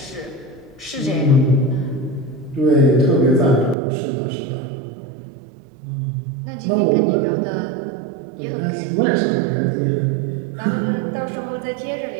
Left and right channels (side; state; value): left; drops out; at 3.8 s